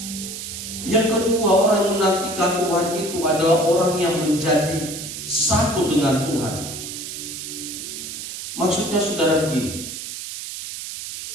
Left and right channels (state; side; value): noise; right; hiss, 8 dB below the sound